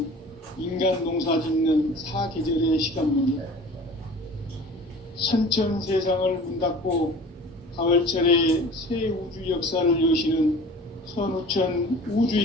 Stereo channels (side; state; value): both; normal; correlation 0.43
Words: 인간 농사 짓는 사계절의 시간문이다. 선천 세상을 문 닫고 가을철에 새 우주 역사를 여시는 선우천 우주